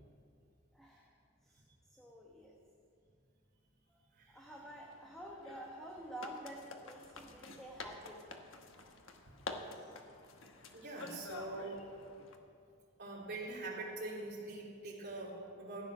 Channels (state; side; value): normal; both; correlation 0.11